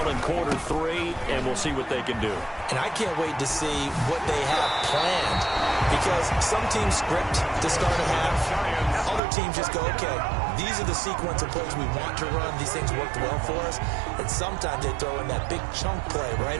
in quarter 3, and we'll see what they can do. And I can't wait to see what they have planned, because some teams script to start a half. Other teams just go, okay, these are the sequence of plays we want to run. These things worked well for us. And sometimes they throw in that big chunk play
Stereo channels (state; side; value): drops out; left; at 9.2 s